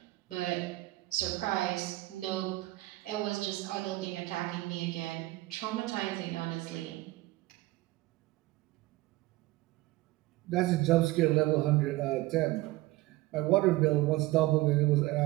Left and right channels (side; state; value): left; quieter; 18.9 dB